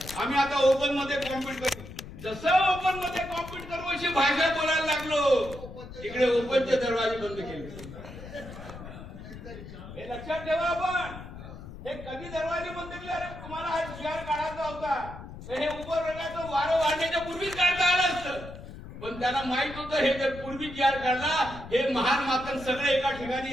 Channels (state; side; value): noise; left; rumble, 13 dB below the sound